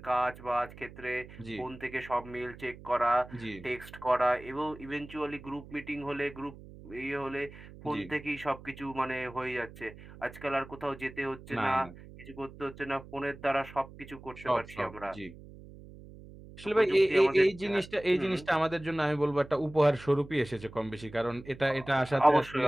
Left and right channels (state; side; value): noise; right; hum, 17 dB below the sound